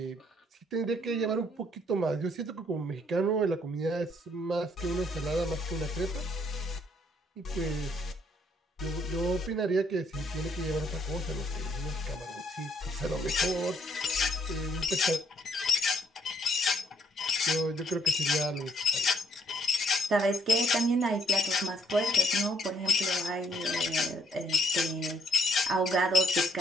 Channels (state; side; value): normal; both; correlation 0.68